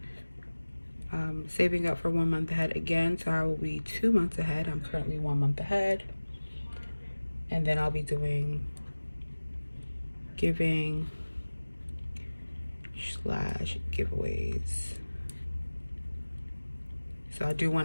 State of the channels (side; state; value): both; inverted; correlation -1.00